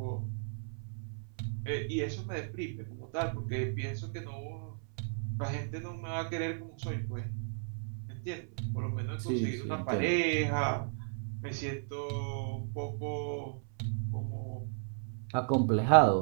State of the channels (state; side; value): silent; left; 55 dB below the other